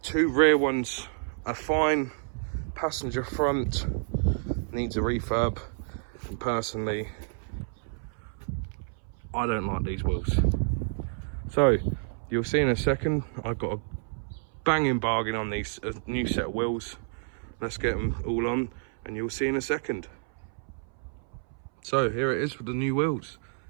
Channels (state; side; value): silent; left; 58 dB below the other